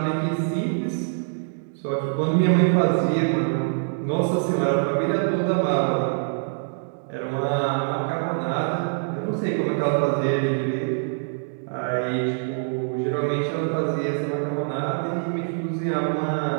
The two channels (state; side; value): silent; left; digital silence